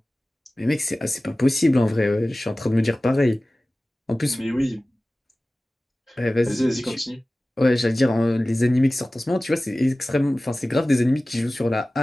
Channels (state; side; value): normal; both; correlation 0.97